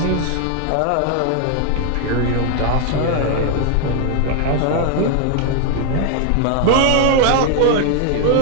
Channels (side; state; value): both; different; correlation 0.00